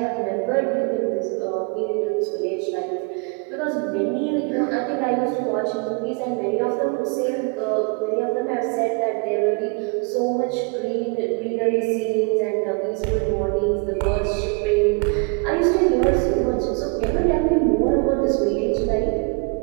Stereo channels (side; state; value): left; quieter; 33.9 dB